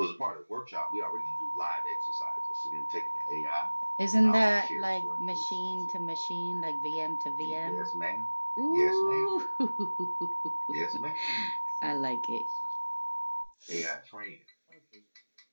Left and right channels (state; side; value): inverted; both; correlation -1.00